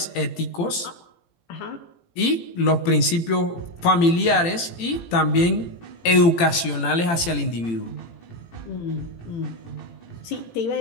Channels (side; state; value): right; late; 18 ms